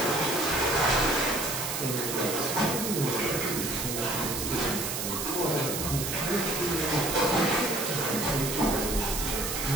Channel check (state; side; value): noise; right; hiss, 3 dB below the sound